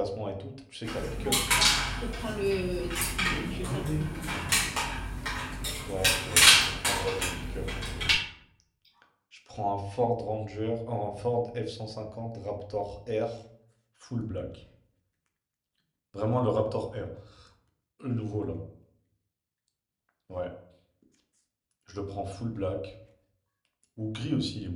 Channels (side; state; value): both; identical; correlation 1.00